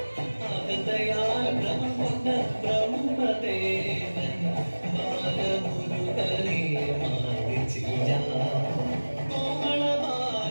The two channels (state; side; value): inverted; both; correlation -1.00